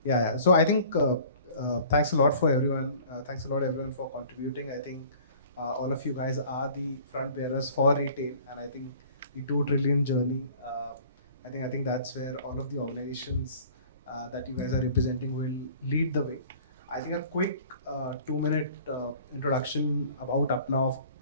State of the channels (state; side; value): inverted; both; correlation -0.49